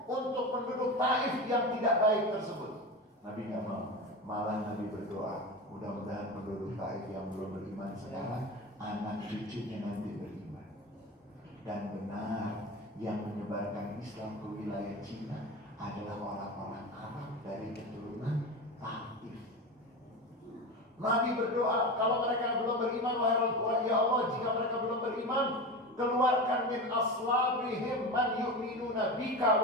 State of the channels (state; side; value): normal; both; correlation 0.25